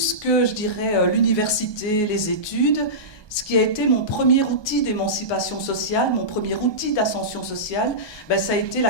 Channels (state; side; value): late; right; 1.2 ms